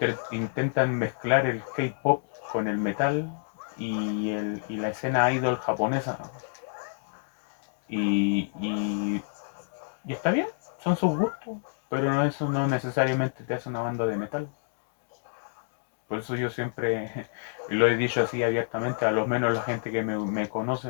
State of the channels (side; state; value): right; silent; digital silence